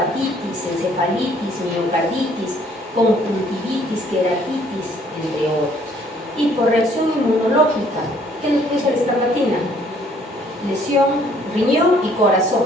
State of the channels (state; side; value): normal; both; correlation 0.61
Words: encefalitis, miocarditis, conjuntivitis, queratitis, entre otros. Y por reacción inmunológica, ¿qué nos puede ser la escarlatina? Lesión, riñón y corazón,